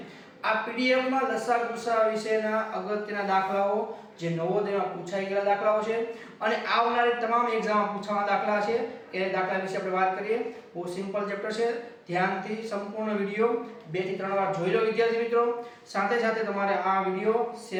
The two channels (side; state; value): both; identical; correlation 1.00